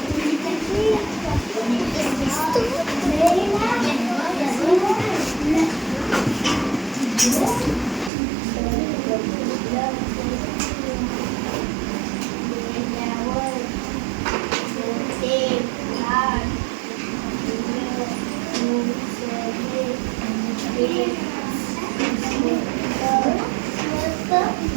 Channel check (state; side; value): drops out; left; at 8.1 s